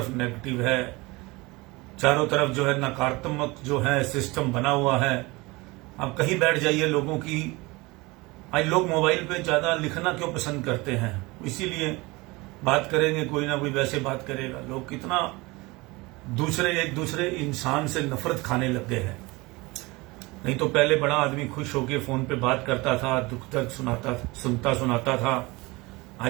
नेगेटिव है, चारों तरफ जो है नकारात्मक जो है सिस्टम बना हुआ है। आप कहीं बैठ जाइए, लोगों की आज लोग मोबाइल पे ज्यादा लिखना क्यों पसंद करते हैं? इसीलिए बात करेंगे, कोई ना कोई वैसे बात करेगा। लोग कितना एक दूसरे इंसान से नफरत खाने लग गए हैं। नहीं तो पहले बड़ा आदमी खुश होकर फोन पे बात करता था, दुख दर्द सुनाता था।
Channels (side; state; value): left; quieter; 23.5 dB